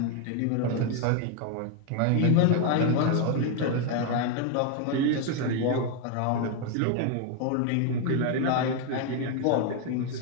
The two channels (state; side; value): different; both; correlation 0.01